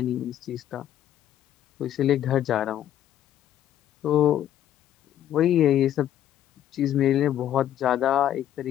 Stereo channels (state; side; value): quieter; right; 11.5 dB